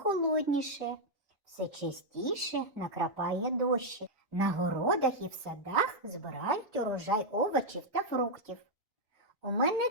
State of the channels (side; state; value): left; late; 1.7 ms